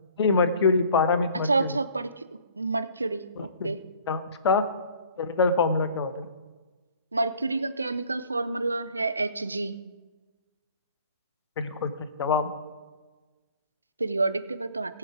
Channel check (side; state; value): both; inverted; correlation -0.54